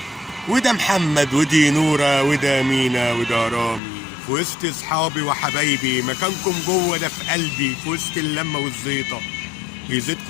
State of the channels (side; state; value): right; drops out; at 3.8 s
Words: وده محمد ودي نورة وده مينا وده رامي في وسط اصحابي وحبايبي مكانكم جوه ده في قلبي في وسط اللمة والزيطة